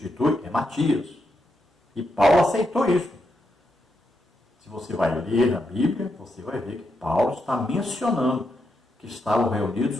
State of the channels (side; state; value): both; normal; correlation 0.83